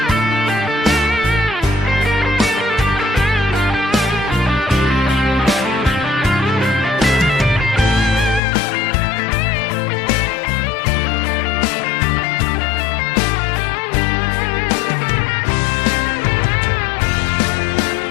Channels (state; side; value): drops out; right; at 8.4 s